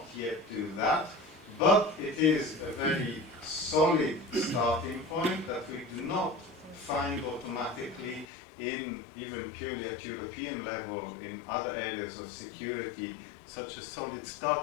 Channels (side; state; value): right; drops out; at 8.2 s